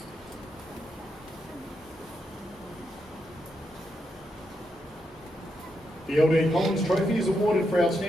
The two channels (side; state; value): both; normal; correlation 0.82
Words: The LD Collins Trophy is awarded for